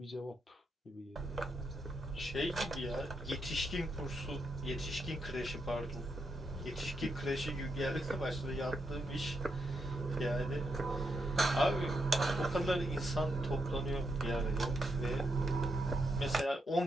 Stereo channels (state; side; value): normal; both; correlation 0.82